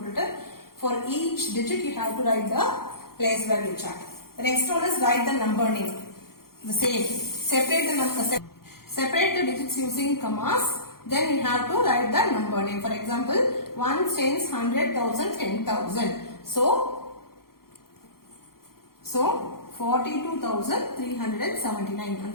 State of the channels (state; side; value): late; right; 0.93 ms